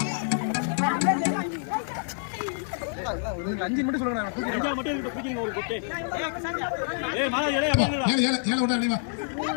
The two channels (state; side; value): silent; right; digital silence